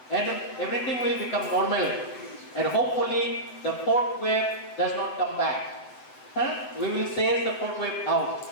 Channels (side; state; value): right; late; 7.9 ms